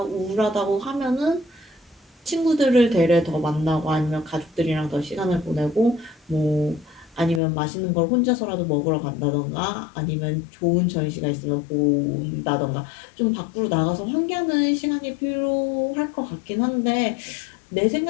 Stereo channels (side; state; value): right; drops out; at 7.4 s